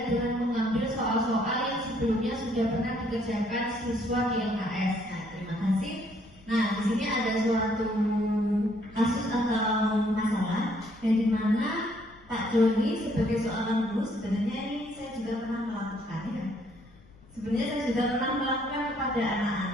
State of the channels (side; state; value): left; noise; rumble, 25 dB below the sound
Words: dengan mengambil soal-soal yang sebelumnya sudah pernah dikerjakan siswa di LKS. Nah, terima kasih. Nah, di sini ada suatu kasus atau masalah yang dimana Pak Doni sebagai seorang guru, sebenarnya ini saya juga pernah melakukan ya. Sebenarnya saya sudah pernah melakukan kepada